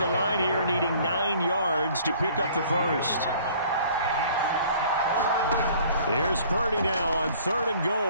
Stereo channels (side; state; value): both; inverted; correlation -0.53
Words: line here needing 9 yards to pick up the first. Here's Purdy now on 3rd and